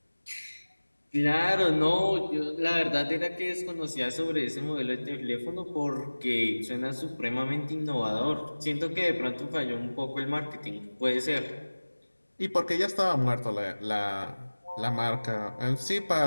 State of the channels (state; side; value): inverted; both; correlation -1.00